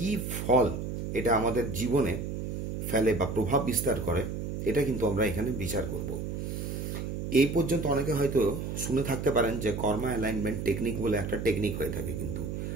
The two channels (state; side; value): noise; right; hum, 4 dB below the sound